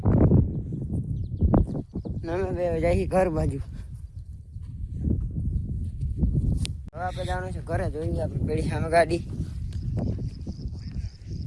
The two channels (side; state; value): both; identical; correlation 1.00